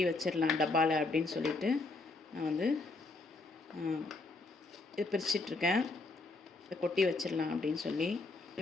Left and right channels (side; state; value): right; quieter; 3.4 dB